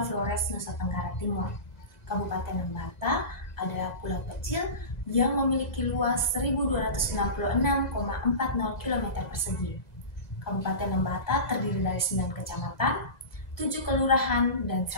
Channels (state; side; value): late; right; 2.0 ms